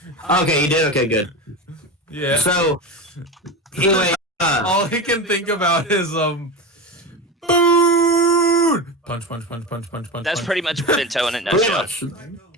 Okay, you did? Okay, good. Yeah. So, anyway, all he can think about is, food! Punch. That's pretty much Bento in a nutshell.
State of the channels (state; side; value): normal; both; correlation 0.23